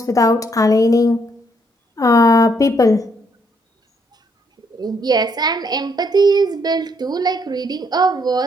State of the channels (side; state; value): both; normal; correlation 0.72